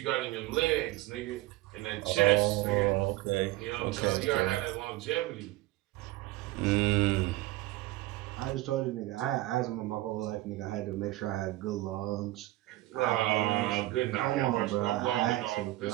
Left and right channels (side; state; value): left; quieter; 17.8 dB